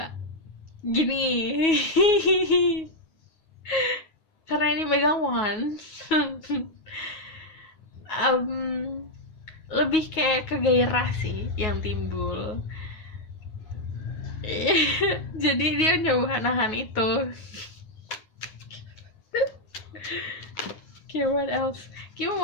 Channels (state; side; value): late; right; 9.4 ms